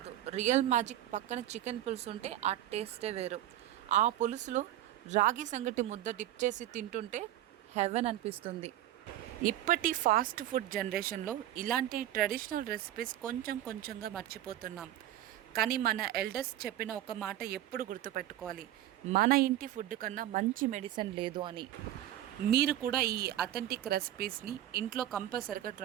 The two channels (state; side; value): quieter; left; 13.1 dB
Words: రియల్ మ్యాజిక్ పక్కన చికెన్ పులుసు ఉంటే ఆ టేస్టే వేరు. ఆ పులుసులో రాగి సంగటి ముద్ద డిప్ చేసి తింటుంటే హెవెన్ అనిపిస్తుంది. ఇప్పటి ఫాస్ట్ ఫుడ్ జనరేషన్లో ఇలాంటి ట్రెడిషనల్ రెసిపీస్ కొంచెంగా మర్చిపోతున్నాం. కానీ మన ఎల్డర్స్ చెప్పిన ఒక మాట ఎప్పుడు గుర్తుపెట్టుకోవాలి, మన ఇంటి ఫుడ్ కన్నా మంచి మెడిసిన్ లేదు అని. మీరు కూడా ఈ అథెంటిక్ రెసిపీస్ని ఇంట్లో కంపల్సరిగా